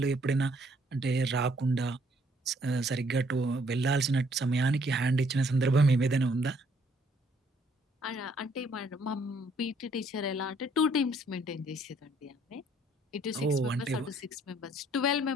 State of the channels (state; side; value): normal; both; correlation 0.65